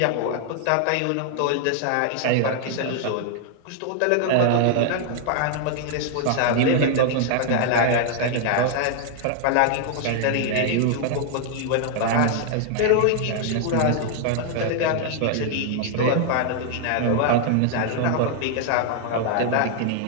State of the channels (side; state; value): both; different; correlation 0.00